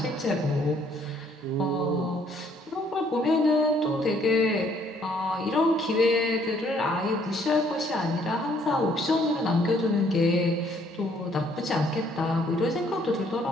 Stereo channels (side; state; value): both; normal; correlation 0.65